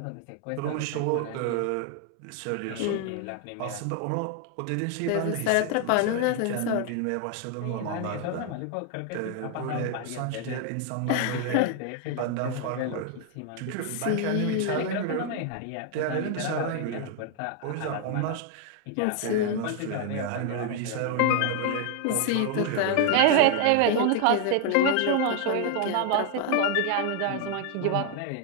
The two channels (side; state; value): both; different; correlation 0.00